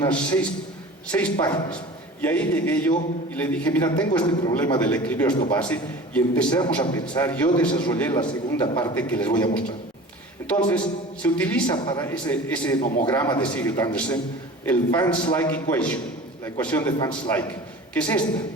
6 páginas. Y ahí llegué yo y le dije, mira, tengo este problema del equilibrio ácido-base, y empezamos a pensar. Yo desarrollé la segunda parte que les voy a mostrar. Entonces, se utiliza para ese nomograma de Sigurd-Andersen el Van Slyke Equation, la ecuación de Van Slyke, que es esta,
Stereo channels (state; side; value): normal; both; correlation 0.39